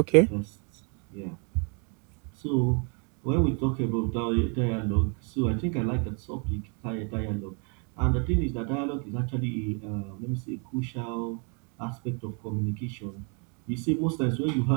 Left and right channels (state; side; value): quieter; left; 37.2 dB